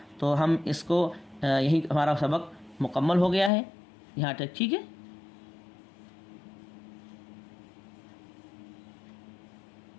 تو ہم اس کو یہی ہمارا سبق مکمل ہو گیا ہے یہاں تک، ٹھیک ہے۔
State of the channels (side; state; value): right; drops out; at 3.5 s